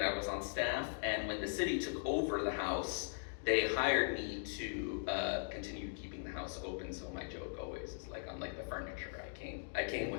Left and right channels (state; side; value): silent; right; digital silence